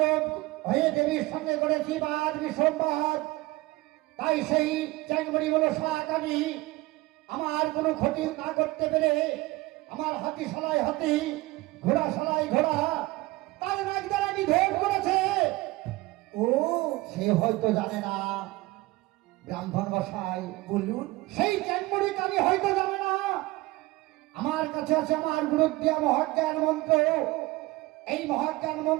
হয়ে দেবীর সঙ্গে করেছি বাদ বিসম্বাদ, তাই সেই চ্যাংমড়ি হলো সাকানি আমার কোনো ক্ষতি না করতে পেরে আমার হাতি সালাই হাতি, ঘোড়া সালাই ঘোড়া, তার নাক দ্বারা নিধন করেছে। ও, সে হয়তো জানে না ব্রাহ্মণ মশাই, বলুন। সেই চ্যাংমড়ি কানি হয়তো জানে না আমার কাছে আছে আমার গুরুদ্দিয়া মহাজ্ঞান মন্ত্র। এই মহাজ্ঞান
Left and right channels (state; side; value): quieter; left; 20.4 dB